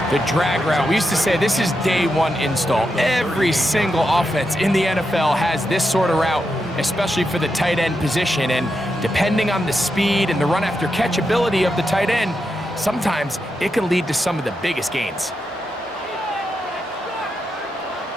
The drag route, we used to say this is day one install. Every single offense in the NFL has this sort of route, especially for the tight end position. And depending on the speed and the run after catch ability of the tight end, sometimes it can lead to some of the biggest gains.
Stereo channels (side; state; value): both; normal; correlation 0.85